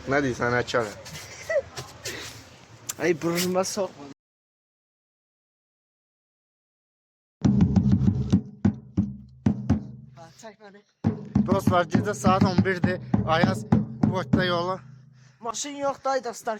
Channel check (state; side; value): identical; both; correlation 1.00